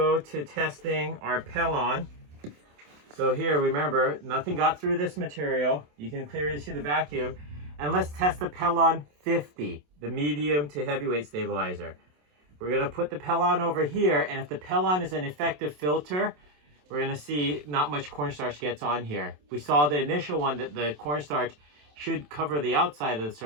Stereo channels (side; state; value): left; late; 27 ms